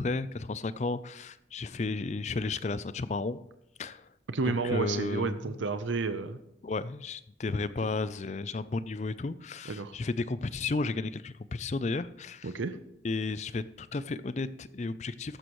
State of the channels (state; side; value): normal; both; correlation 0.51